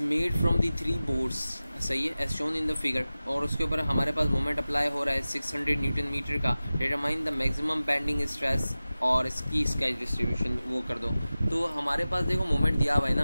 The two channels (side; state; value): both; inverted; correlation -0.96